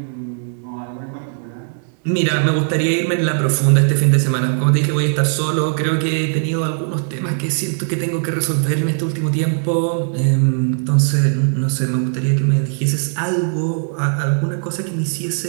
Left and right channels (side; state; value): left; silent; 61 dB below the other